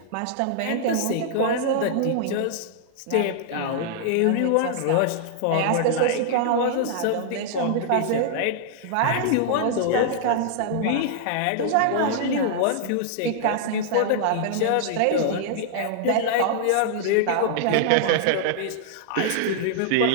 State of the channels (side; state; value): both; different; correlation -0.01